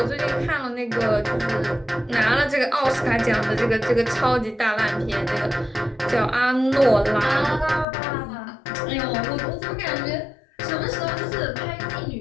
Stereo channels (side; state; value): right; drops out; at 7.9 s